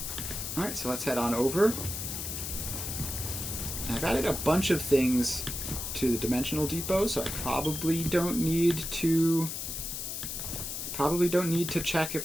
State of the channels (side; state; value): left; noise; hiss, 5 dB below the sound